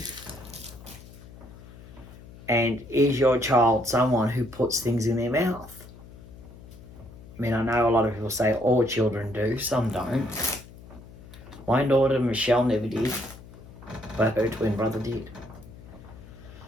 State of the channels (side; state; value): left; noise; hum, 18 dB below the sound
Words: And is your child someone who puts things in their mouth? I mean, I know a lot of people say all children do, some don't. My daughter Michelle never did, but her twin brother did.